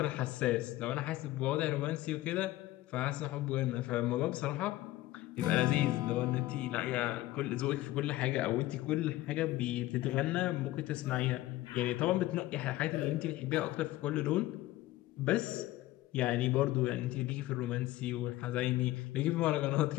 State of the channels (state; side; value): quieter; right; 16.7 dB